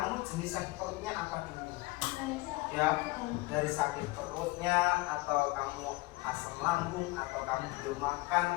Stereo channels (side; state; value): right; quieter; 21.4 dB